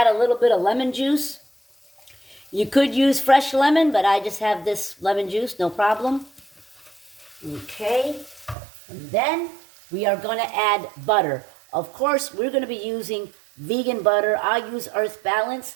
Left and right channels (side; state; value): left; drops out; at 8.6 s